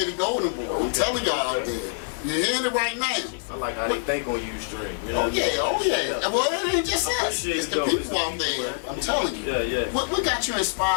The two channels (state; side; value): silent; right; digital silence